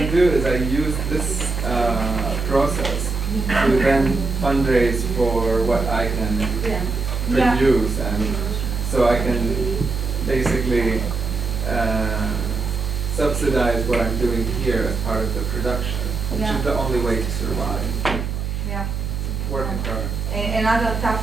do is I use this process to then fundraise for what I can produce, and so I can basically subsidize what I'm doing here as part of the production, which is the only way to survive. Yeah. Working hard. Another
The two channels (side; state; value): right; noise; hum, 3 dB below the sound